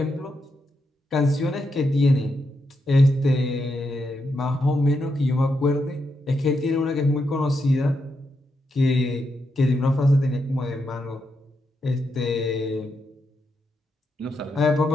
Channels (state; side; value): normal; both; correlation 0.83